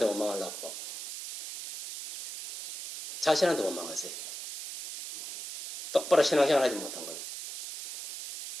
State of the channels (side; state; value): right; noise; hiss, 9 dB below the sound